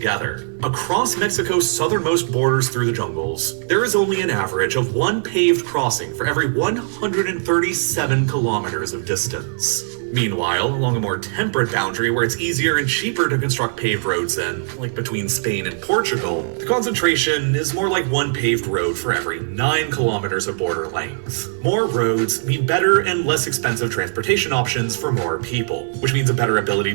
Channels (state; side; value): silent; left; 64 dB below the other